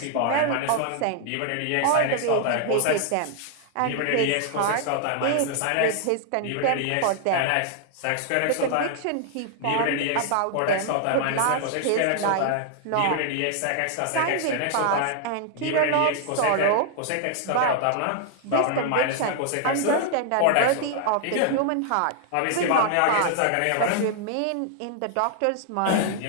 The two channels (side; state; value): both; different; correlation 0.00